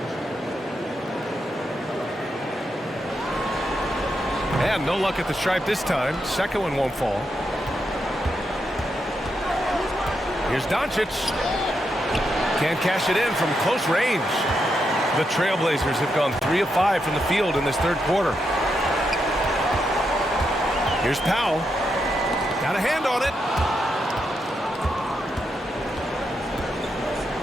And no luck at the stripe this time. Second one won't fall. Here's Doncic. Can't cash it in from close range. The Trailblazers have gone 3 of 5 from the field in this third quarter. Here's Powell. Got a hand on it.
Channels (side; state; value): both; normal; correlation 0.83